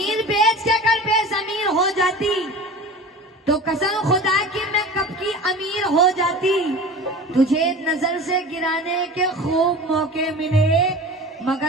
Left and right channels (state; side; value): normal; both; correlation 0.36